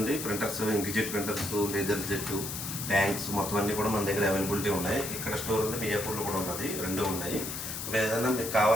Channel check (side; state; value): left; noise; hiss, 6 dB below the sound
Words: printers, inkjet printers, laser jet, tanks మొత్తం అన్నీ కూడా మన దగ్గర అవైలబిలిటీ ఉన్నాయి. ఇక్కడ స్టోర్ ఉంది, మియాపూర్లో కూడా ఉన్నది, రెండు ఉన్నాయి. ఏదైనా మీకు